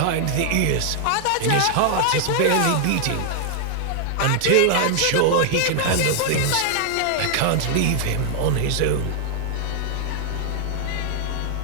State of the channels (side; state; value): both; different; correlation 0.00